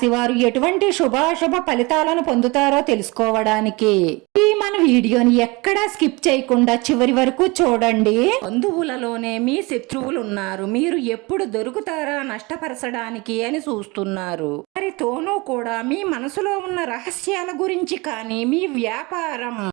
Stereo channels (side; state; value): left; quieter; 25.1 dB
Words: వారు ఎటువంటి శుభాశుభ ఫలితాలను పొందుతారో తెలుసుకోవడానికి ఈ మన వీడియోని ఎక్కడా స్కిప్ చేయకుండా చివరి వరకు చూడండి. బంధువులలోనే మీ శత్రువులు ఉన్నారు. మీరు ఎప్పుడు దొరుకుతారా నష్టపరచడానికి అని చూస్తున్నారు. వారితోనూ కూడా మీ మనసులో ఉన్న రహస్యాల గురించి కానీ మీ వ్యాపారం